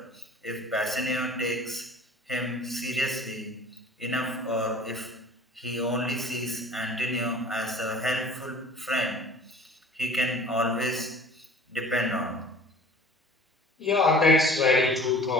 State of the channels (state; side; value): normal; both; correlation 0.47